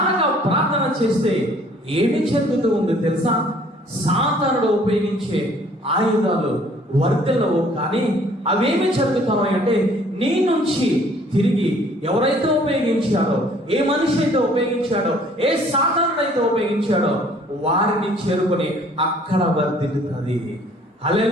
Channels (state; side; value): normal; both; correlation 0.57